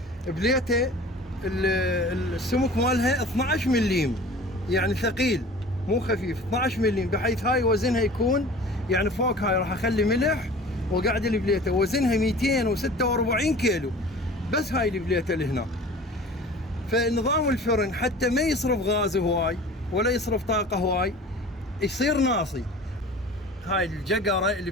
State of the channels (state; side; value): normal; both; correlation 0.42